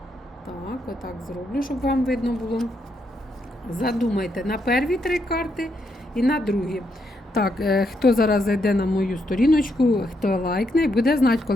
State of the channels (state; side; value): normal; both; correlation 0.78